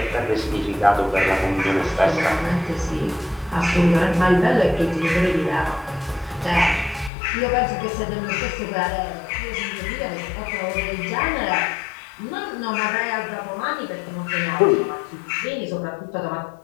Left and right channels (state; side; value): drops out; right; at 7.1 s